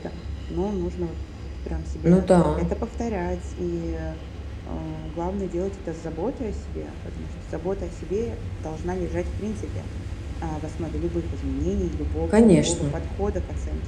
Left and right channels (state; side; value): identical; both; correlation 1.00